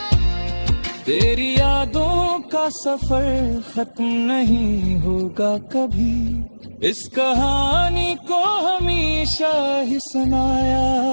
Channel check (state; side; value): inverted; both; correlation -1.00